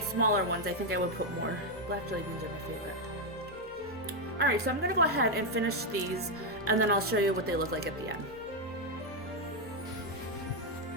smaller ones, I think I would put more. Black jelly beans are my favorite. Alright, so I'm going to go ahead and finish these, and then I'll show you what they look like at the end.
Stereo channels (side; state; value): both; normal; correlation 0.03